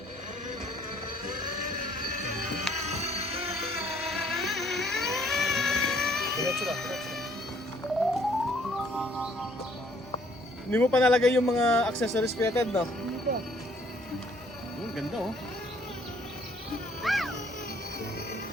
Hindi mo pa nalagay yung mga accessories fitted, no? Hindi pa. Ganda oh.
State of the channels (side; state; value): both; normal; correlation 0.62